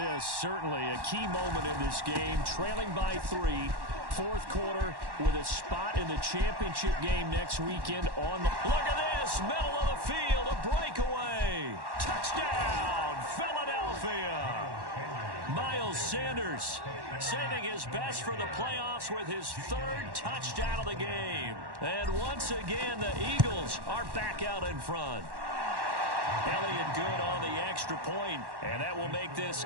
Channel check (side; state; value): left; late; 1.1 ms